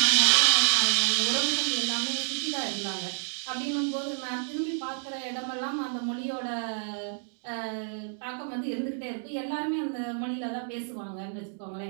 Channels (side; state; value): left; silent; digital silence